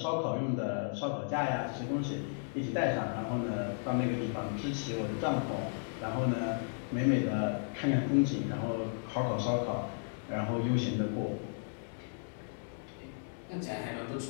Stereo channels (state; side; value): silent; right; digital silence